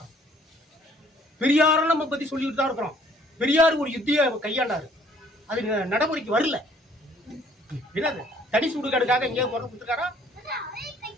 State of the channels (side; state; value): both; normal; correlation 0.60